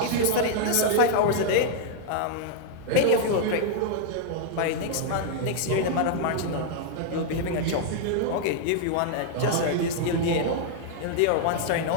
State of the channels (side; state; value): both; different; correlation 0.00